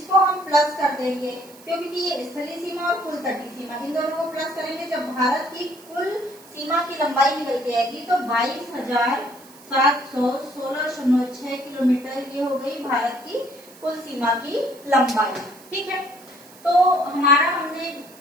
हम प्लस कर देंगे, क्योंकि ये स्थलीय सीमा और कुल तटीय सीमा, इन दोनों को प्लस करेंगे। जब भारत की कुल सीमा की लंबाई निकल के आएगी तो 22,716.6 किलोमीटर, ये हो गई भारत की कुल सीमा की लंबाई। ठीक है, तो हमारा हमने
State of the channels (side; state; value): right; noise; hiss, 22 dB below the sound